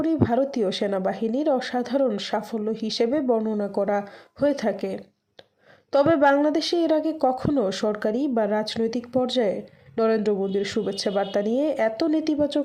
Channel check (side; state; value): both; identical; correlation 1.00